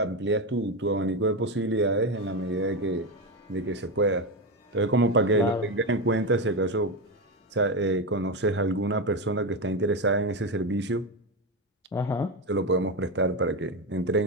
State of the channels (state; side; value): normal; both; correlation 0.13